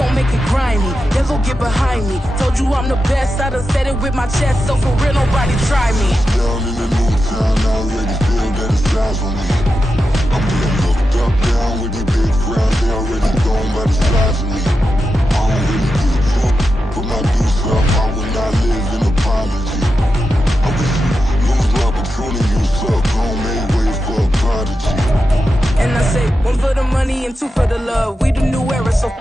make it grimy, devil get behind me. Told you I'm the best, I done said it with my chest, so for real nobody try me. Down in the new town, I already feel that it's eyes on me. I'm getting looked up, down with these big crowds, they already gone by the size of me. I don't really give a fuck, put my deuce up, I will not live in apology. I wish you lose the opportunity, you suck, gon' make way for a prodigy. And I say, one for the money and two for the love. We the new era, so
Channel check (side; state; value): both; normal; correlation 0.89